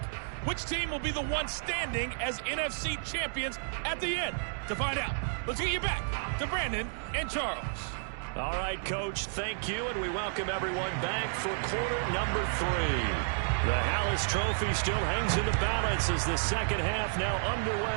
Which team will be the one standing as NFC champions at the end? To find out, let's get you back to Brandon and Charles. All right, Coach, thank you, and we welcome everyone back for quarter number 3. The Hallis Trophy still hangs in the balance as the second half now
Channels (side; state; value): left; silent; 57 dB below the other